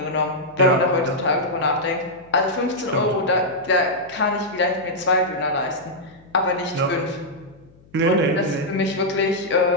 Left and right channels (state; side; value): noise; left; hum, 28 dB below the sound